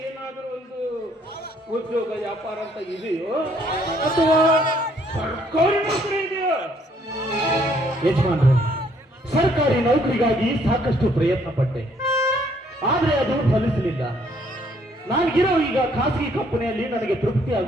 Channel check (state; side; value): normal; both; correlation 0.65